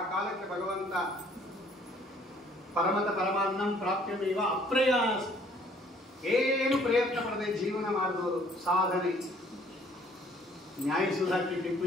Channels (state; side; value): normal; both; correlation 0.59